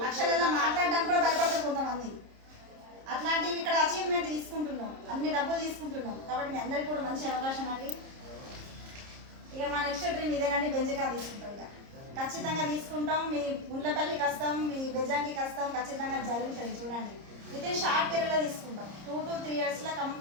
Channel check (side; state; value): left; late; 30 ms